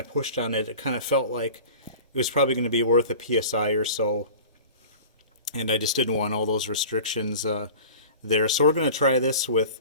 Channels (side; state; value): both; inverted; correlation -0.39